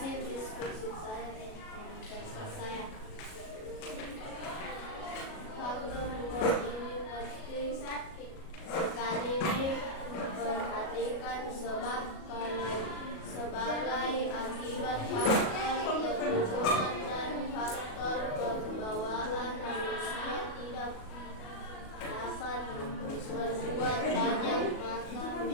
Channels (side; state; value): right; late; 37 ms